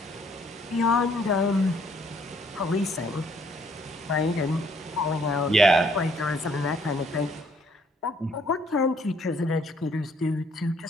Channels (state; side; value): normal; both; correlation 0.65